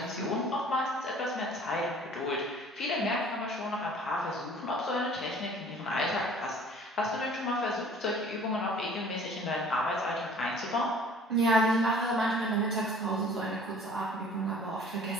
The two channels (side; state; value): both; normal; correlation 0.51